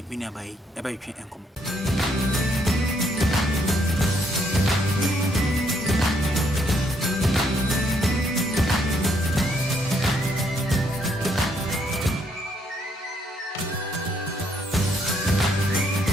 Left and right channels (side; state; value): both; normal; correlation 0.71